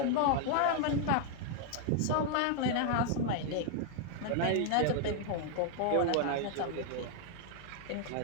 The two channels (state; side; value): different; both; correlation 0.00